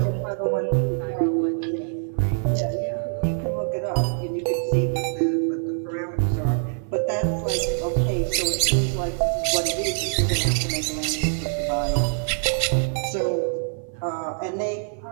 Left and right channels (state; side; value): silent; left; 58 dB below the other